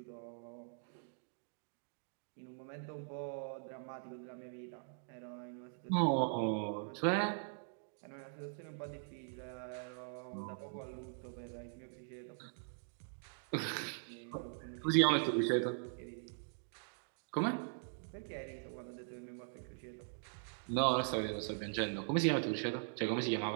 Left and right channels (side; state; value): left; silent; digital silence